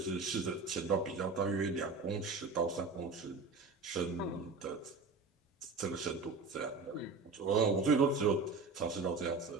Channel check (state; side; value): quieter; left; 4.2 dB